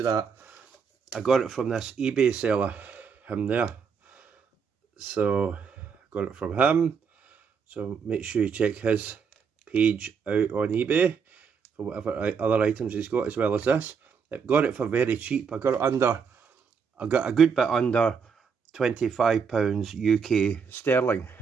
that, I got it from this eBay seller, him there. So got it from him. So make sure you check his page out on eBay for whatever other items he's got, as well as this. I got it for very cheap. I got a good bit under £25 UK sterling.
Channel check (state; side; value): quieter; left; 6.2 dB